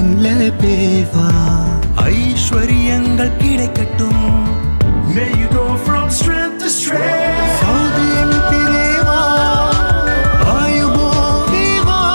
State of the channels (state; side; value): inverted; both; correlation -1.00